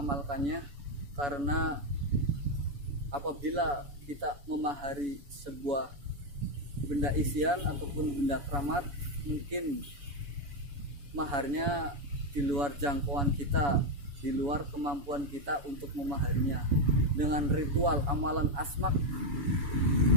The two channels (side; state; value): left; late; 7.0 ms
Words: karena apabila kita memahari sebuah benda isian ataupun benda keramat, mungkin maharnya di luar jangkauan kita, di luar kemampuan kita untuk memahaminya. Dengan ritual amalan asmak